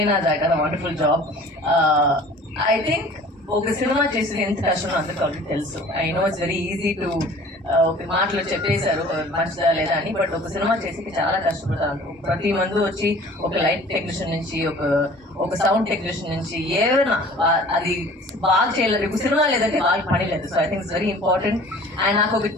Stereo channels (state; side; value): normal; both; correlation 0.47